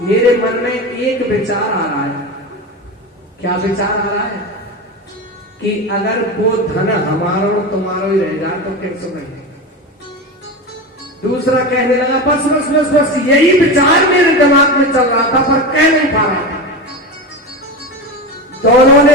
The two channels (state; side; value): normal; both; correlation 0.22